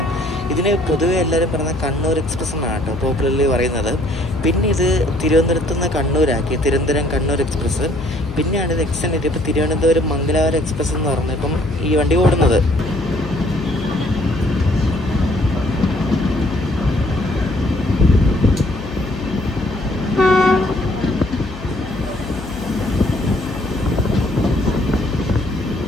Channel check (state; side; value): noise; left; hum, 12 dB below the sound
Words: ഇതിന് പൊതുവെ എല്ലാവരും പറയുന്നത് കണ്ണൂർ എക്സ്പ്രസ് എന്നാണ് കേട്ടോ പോപ്പുലർലി പറയുന്നത്. പിന്നെ ഇത് തിരുവനന്തപുരത്ത് നിന്ന് കണ്ണൂരാക്കി, തിരുവനന്തപുരം കണ്ണൂർ എക്സ്പ്രസ്. പിന്നെയാണ് ഇത് എക്സ്റ്റെൻഡ് ചെയ്ത് ഇപ്പോൾ തിരുവനന്തപുരം മംഗലാപുരം എക്സ്പ്രസ് എന്ന് പറഞ്ഞ് ഇപ്പം ഈ വണ്ടി ഓടുന്നത്.